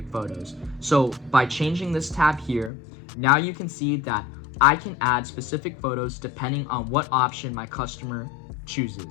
photos. So by changing this tab here, now you can see that I can add specific photos depending on what option my customer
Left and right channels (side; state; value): right; drops out; at 2.7 s